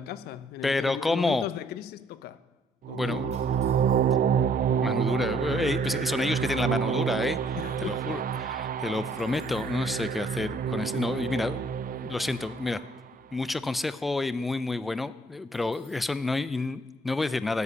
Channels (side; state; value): both; normal; correlation 0.64